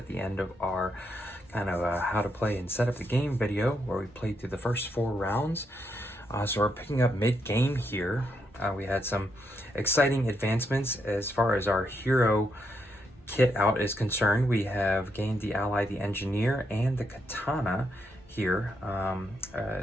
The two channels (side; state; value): both; normal; correlation 0.79